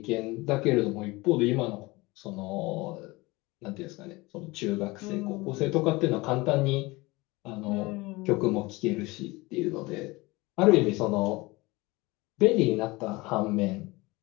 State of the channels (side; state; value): right; quieter; 22.6 dB